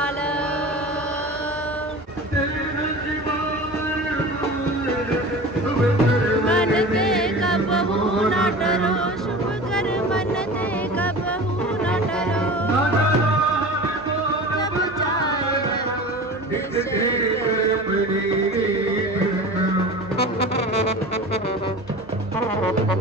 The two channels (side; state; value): both; normal; correlation 0.35